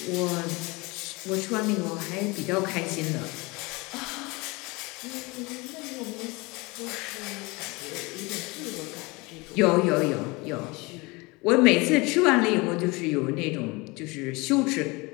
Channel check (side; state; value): right; quieter; 25.2 dB